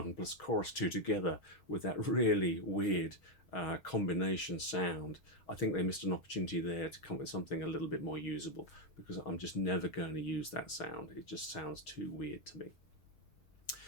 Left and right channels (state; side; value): late; right; 6.3 ms